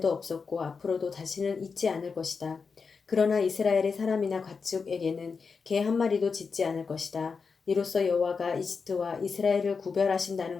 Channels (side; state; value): right; quieter; 5.2 dB